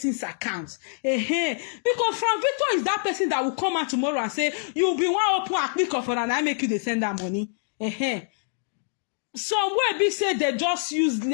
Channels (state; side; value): silent; right; digital silence